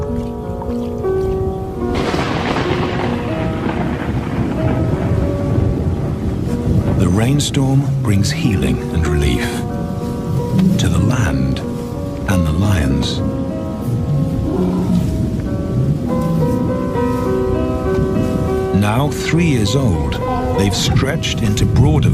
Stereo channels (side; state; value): both; identical; correlation 1.00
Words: The rainstorm brings healing and relief to the land and the lions. Now 3 years old, they've stretched into broader